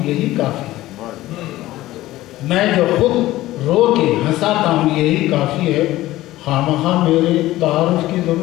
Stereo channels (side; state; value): right; quieter; 16.3 dB